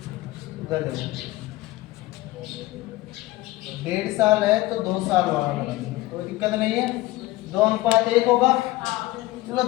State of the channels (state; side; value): quieter; right; 18.3 dB